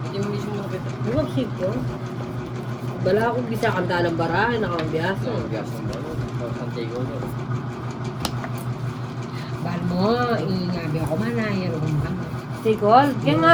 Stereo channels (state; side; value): identical; both; correlation 1.00